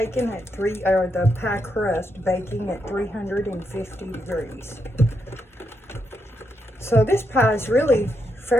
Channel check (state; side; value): normal; both; correlation 0.81